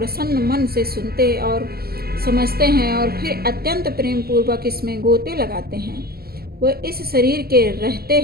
मन से सुनते और समझते हैं और फिर अत्यंत प्रेम पूर्वक इसमें गोते लगाते हैं, वह इस शरीर के रहते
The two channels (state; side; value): late; left; 0.45 ms